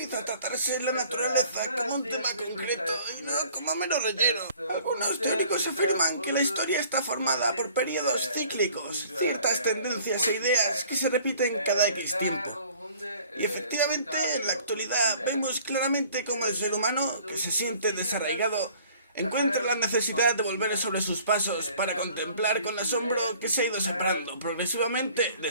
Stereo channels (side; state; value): both; inverted; correlation -0.53